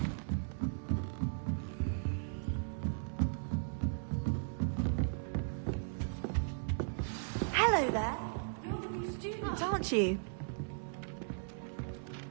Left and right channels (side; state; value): left; silent; digital silence